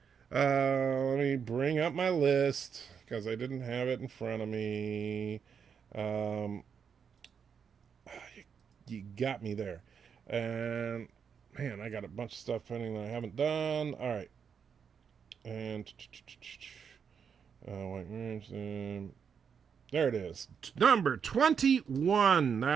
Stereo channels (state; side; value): quieter; left; 6.9 dB